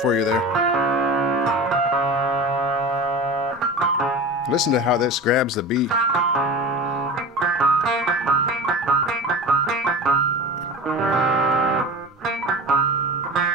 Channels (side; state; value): both; normal; correlation 0.32